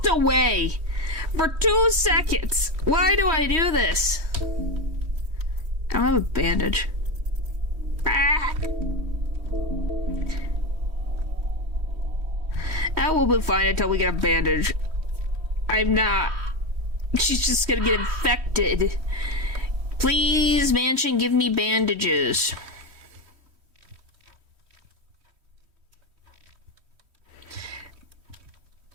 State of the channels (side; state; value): left; late; 3.1 ms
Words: away for 2 seconds. Why do I do this? I don't have a bandage. Ah! That will be fine until we get a bandage. I'm not. She's just gonna get infected. Please, mansion, give me bandages.